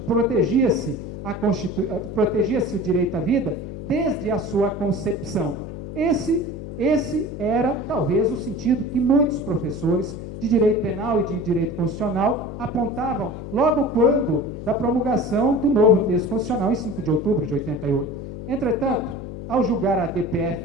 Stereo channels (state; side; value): noise; left; hum, 9 dB below the sound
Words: protegia-se o direito à vida desde a sua concepção. Esse era talvez o sentido que muitos professores de direito penal e de direito constitucional apontavam logo quando da promulgação do novo texto constitucional em 5 de outubro de 88. Entretanto, ao julgar a